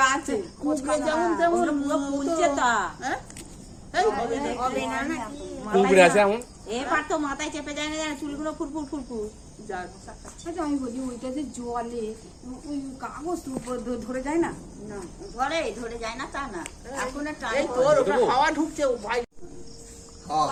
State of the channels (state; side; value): identical; both; correlation 1.00